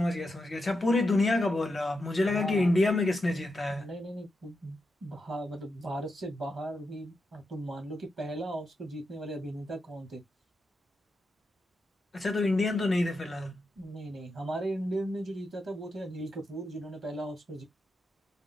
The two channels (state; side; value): normal; both; correlation 0.87